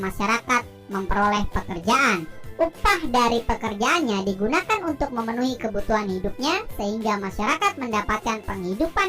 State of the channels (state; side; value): identical; both; correlation 1.00